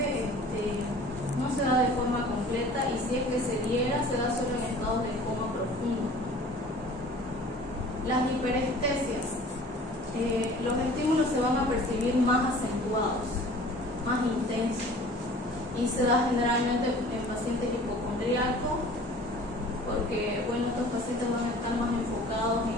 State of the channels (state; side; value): normal; both; correlation 0.46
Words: no se da de forma completa y si es que se diera, se da solo en estados de coma profundo. Las hiperestesias. Los estímulos se van a percibir más acentuados, más intensos y se da generalmente en pacientes hipocondríacos porque bueno, estos pacientes van a estar más enfocados